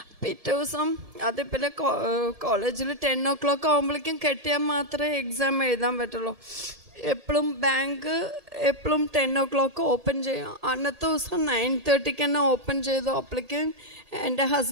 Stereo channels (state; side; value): late; left; 1.7 ms